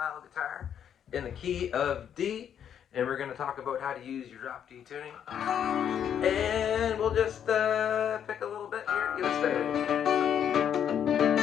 guitar in the key of D, and we're going to talk about how to use your drop D tuning. And we'll just pick a little bit here to get us started.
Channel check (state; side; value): quieter; right; 8.9 dB